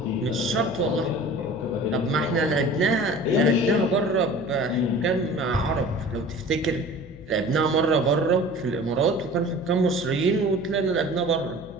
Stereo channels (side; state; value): left; noise; hum, 19 dB below the sound